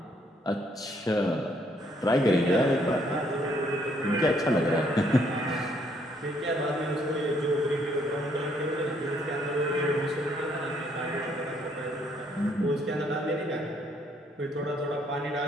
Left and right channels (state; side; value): normal; both; correlation 0.68